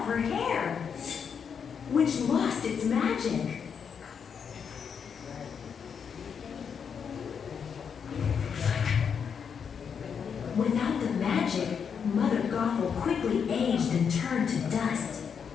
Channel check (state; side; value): quieter; right; 6.9 dB